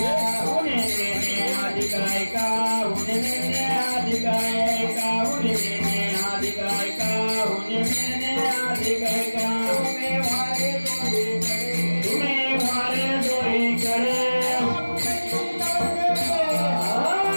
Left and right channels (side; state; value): both; inverted; correlation -1.00